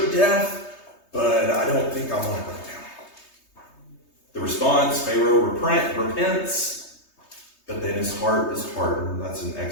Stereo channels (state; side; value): late; right; 3.3 ms